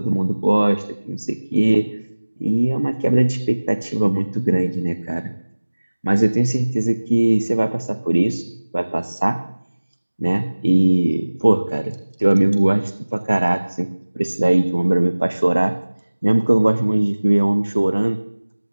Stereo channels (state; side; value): inverted; both; correlation -1.00